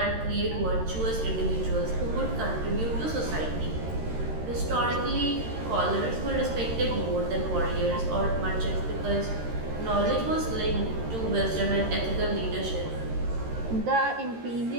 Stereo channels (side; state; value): left; late; 13 ms